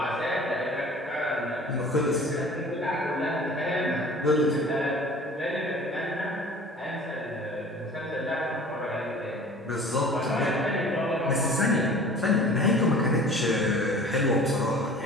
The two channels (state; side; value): normal; both; correlation 0.45